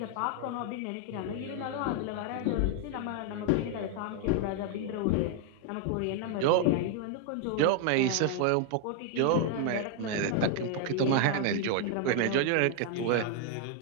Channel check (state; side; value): different; both; correlation 0.00